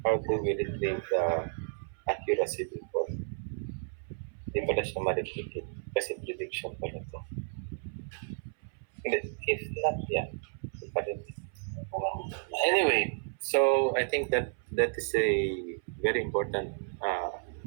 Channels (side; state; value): left; silent; 56 dB below the other